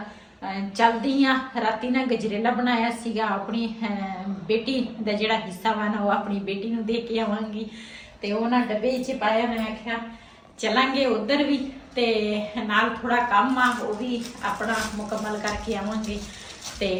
चलदी हाँ। राती ना गजरेला बनाया सीगा, अपनी बेटी का जिहड़ा हिस्सा वा ना वो अपनी बेटी नूं दे के आवांगी। तो वह ना डब्बे च पाया, मैं आख्या चलांगे उधर भी, तो नाल थोड़ा काम आ वो भी अपना मुकम्मल करके आवांगे। तो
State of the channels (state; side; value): identical; both; correlation 1.00